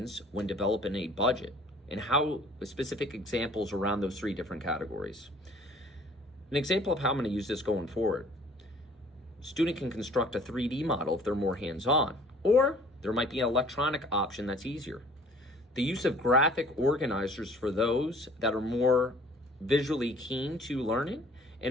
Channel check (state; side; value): normal; both; correlation 0.53